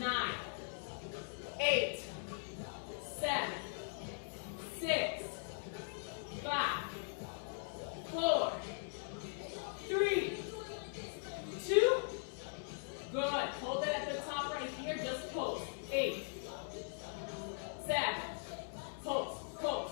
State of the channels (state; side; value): silent; right; 51 dB below the other